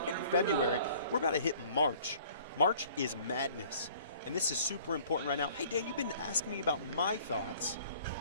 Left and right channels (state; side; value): inverted; both; correlation -0.52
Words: February. We're about to hit March. March is madness. And this is super important right now. Hey, Dan, you've been asking me about my thoughts.